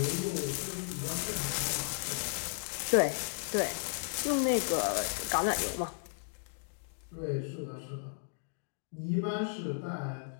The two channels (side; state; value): right; silent; digital silence